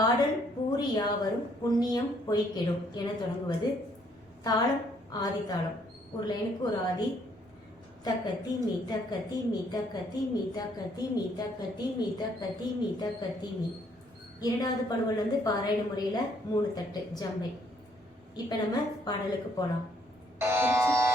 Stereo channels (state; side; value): normal; both; correlation 0.67